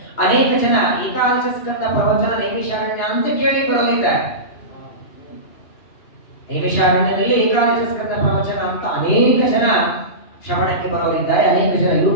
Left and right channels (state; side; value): late; right; 2.8 ms